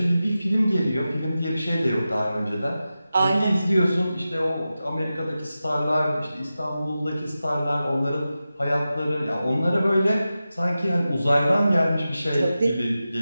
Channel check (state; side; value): inverted; both; correlation -0.93